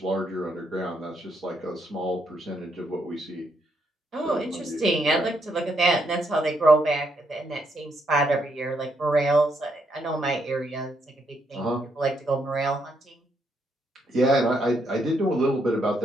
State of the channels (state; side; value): normal; both; correlation 0.76